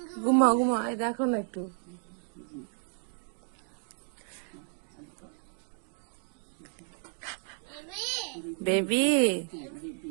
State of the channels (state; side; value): silent; left; 56 dB below the other